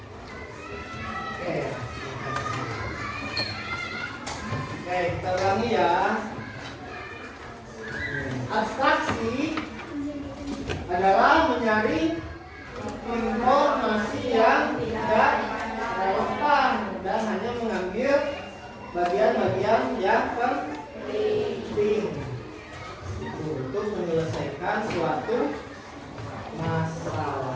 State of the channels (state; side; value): identical; both; correlation 1.00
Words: Oke, kita ulangi ya. Abstraksi adalah mencari informasi yang tidak relevan dan hanya mengambil bagian-bagian yang penting untuk menyelesaikan suatu